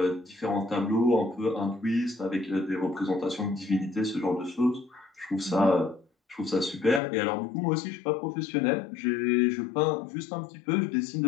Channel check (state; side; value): drops out; right; at 7.0 s